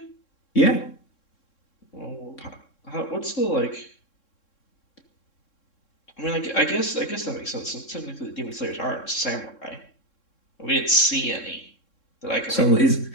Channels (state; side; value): late; right; 3.7 ms